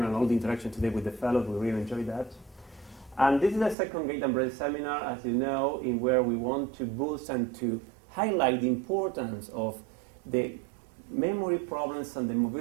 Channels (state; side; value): drops out; left; at 3.8 s